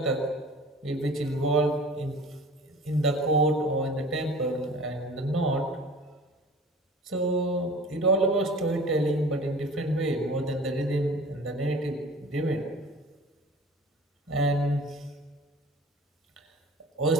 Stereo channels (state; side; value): normal; both; correlation 0.43